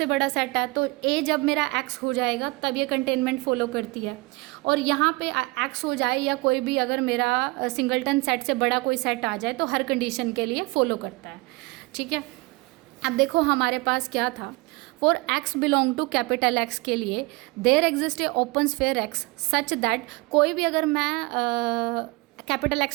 बड़ा सेट है, तो ए जब मेरा एक्स हो जाएगा तब ये कंटेनमेंट फॉलो करती है। और यहाँ पे एक्स हो जाए या कोई भी अगर मेरा सिंगलटन सेट से बड़ा कोई सेट आ जाए तो हर कंडीशन के लिए फॉलो करता है, ठीक है। अब देखो हमारे पास क्या था, for x belong to capital x के लिए there exist a open sphere x such that, कोई भी अगर मैं कैपिटल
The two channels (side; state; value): left; quieter; 24.4 dB